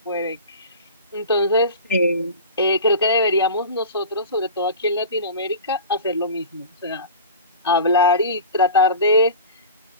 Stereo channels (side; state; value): both; inverted; correlation -0.35